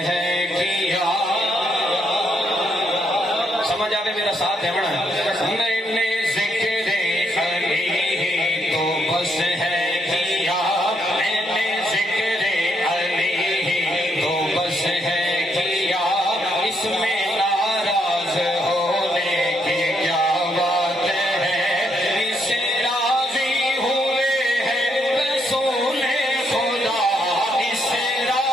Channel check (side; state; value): both; normal; correlation 0.75